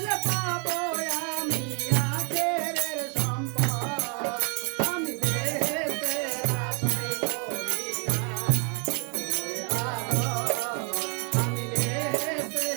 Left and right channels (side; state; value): left; quieter; 37.4 dB